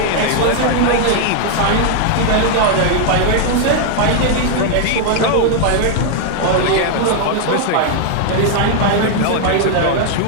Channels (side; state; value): both; different; correlation 0.00